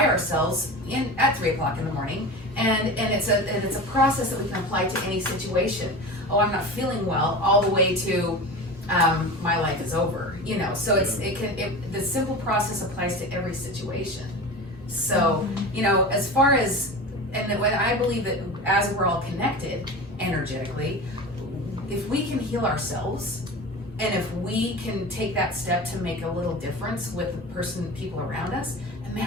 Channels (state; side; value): normal; both; correlation 0.30